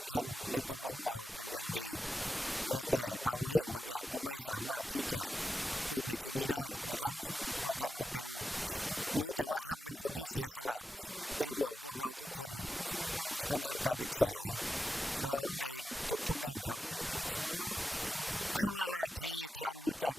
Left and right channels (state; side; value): normal; both; correlation 0.90